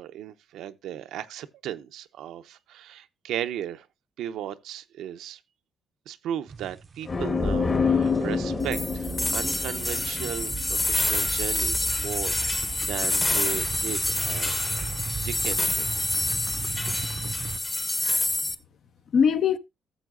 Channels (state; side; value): normal; both; correlation 0.85